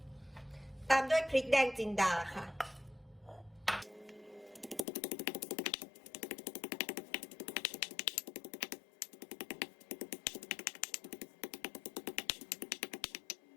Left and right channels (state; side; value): drops out; right; at 4.9 s